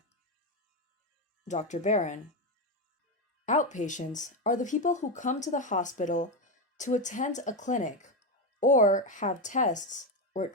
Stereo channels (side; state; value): both; normal; correlation 0.10